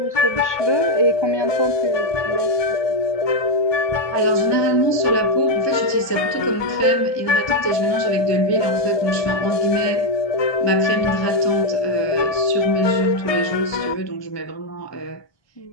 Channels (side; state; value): right; late; 1.2 ms